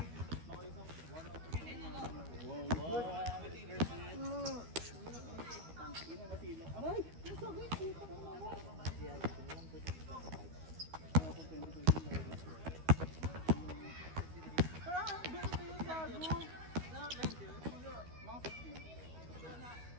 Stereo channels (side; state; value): left; late; 12 ms